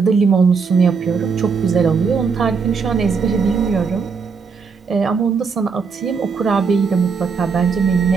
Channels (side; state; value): left; quieter; 5.4 dB